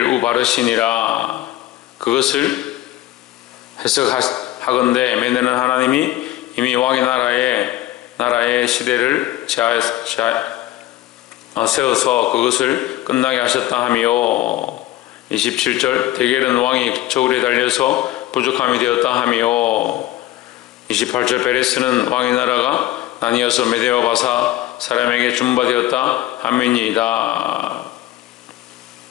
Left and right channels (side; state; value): right; quieter; 15.3 dB